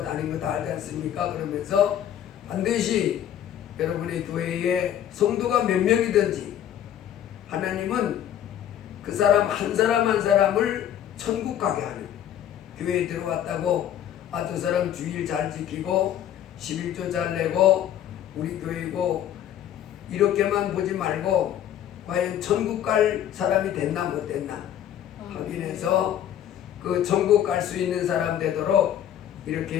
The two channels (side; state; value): right; quieter; 10.7 dB